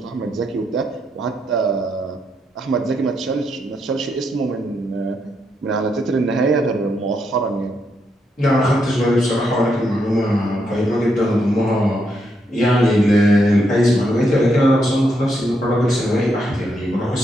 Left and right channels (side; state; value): both; normal; correlation 0.79